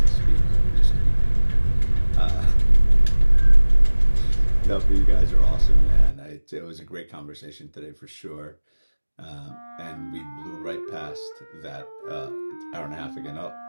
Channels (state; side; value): inverted; both; correlation -1.00